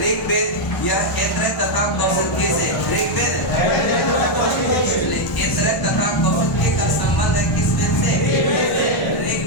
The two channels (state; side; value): late; right; 1.1 ms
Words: ऋग्वेद यह ऐतरेय तथा कौशिकी से ऋग्वेद ऐतरेय तथा कौशिकी का संबंध है किस वेद से